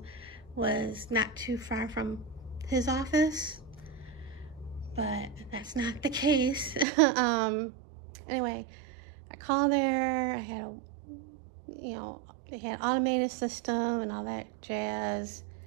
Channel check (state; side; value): drops out; left; at 6.9 s